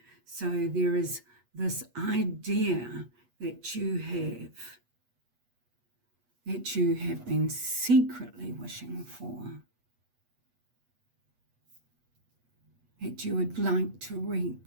So there is this idea that you have been secretly wishing for, that you would like to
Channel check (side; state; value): left; late; 8.3 ms